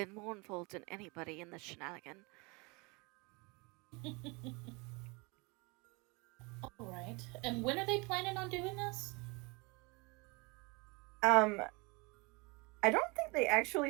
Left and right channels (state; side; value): quieter; left; 28.0 dB